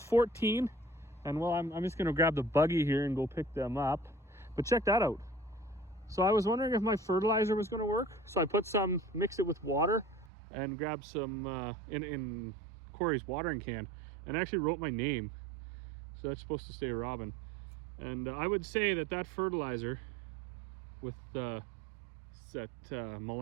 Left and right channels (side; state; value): left; drops out; at 10.3 s